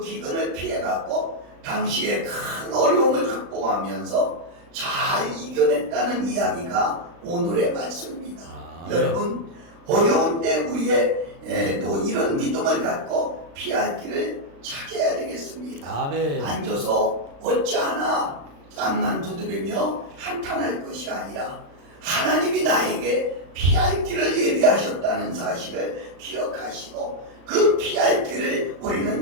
피해갖고 당시에 큰 어려움을 극복하면서 잘 이겨냈다는 이야기가 오늘의 말씀입니다. 여러분, 어려운 때 우리의 또 이런 믿음을 갖고 피할 길을 찾아야 되겠습니다. 아멘. 앉아서 어찌하나 땅만 두드리며 한탄할 것이 아니라 하나님이 나에게 피할 길을 예비하셨다는 사실을 기억하시고 그 피할 길을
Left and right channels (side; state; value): left; late; 35 ms